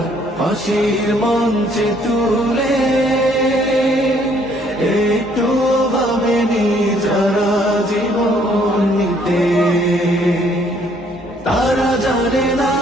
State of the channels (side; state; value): both; normal; correlation 0.64